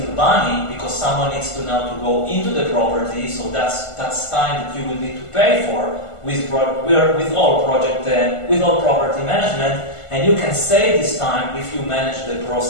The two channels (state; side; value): late; right; 1.5 ms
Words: money because someone needs to now to go into the property. So that's time that you will need to pay for with all property management. And you can save this time if you manage the